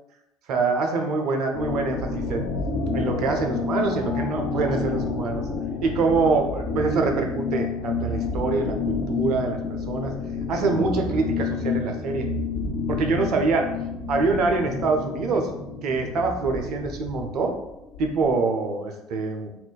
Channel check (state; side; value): normal; both; correlation 0.52